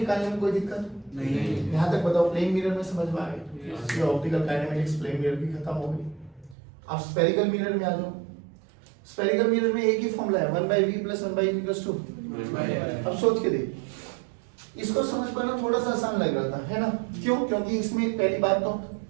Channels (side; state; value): left; drops out; at 6.6 s